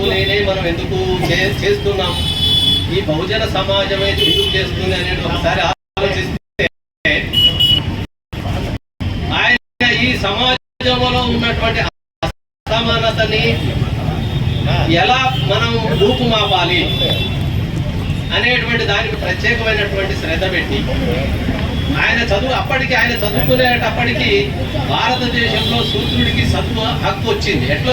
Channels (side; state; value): both; identical; correlation 1.00